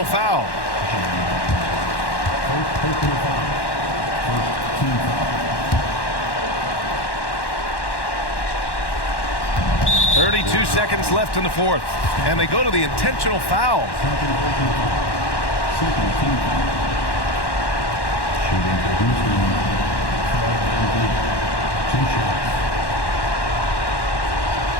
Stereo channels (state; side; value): late; right; 1.1 ms